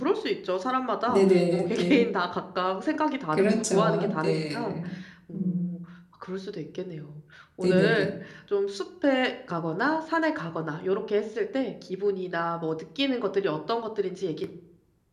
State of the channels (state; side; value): identical; both; correlation 1.00